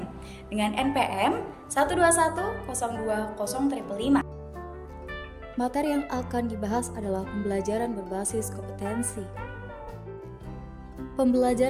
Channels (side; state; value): both; identical; correlation 1.00